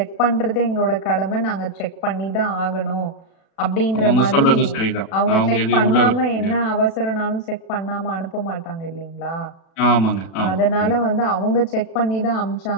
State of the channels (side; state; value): right; late; 36 ms